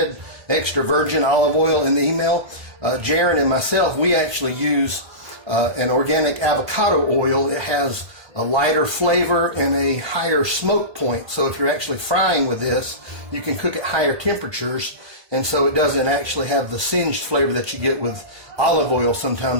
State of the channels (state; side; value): late; left; 1.8 ms